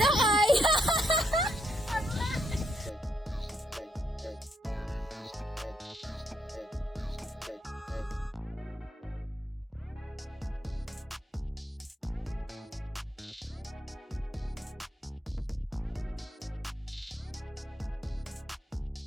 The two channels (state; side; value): normal; both; correlation 0.77